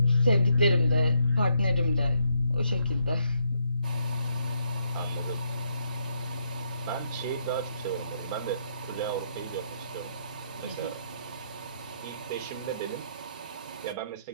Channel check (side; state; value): both; inverted; correlation -0.75